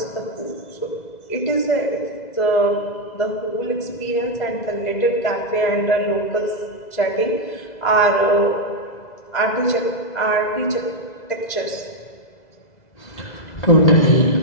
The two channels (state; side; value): late; right; 2.0 ms